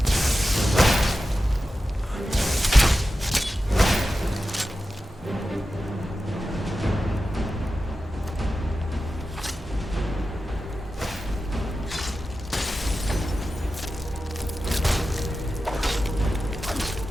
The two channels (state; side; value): normal; both; correlation 0.92